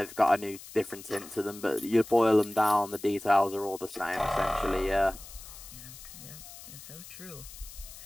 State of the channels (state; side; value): noise; left; hiss, 16 dB below the sound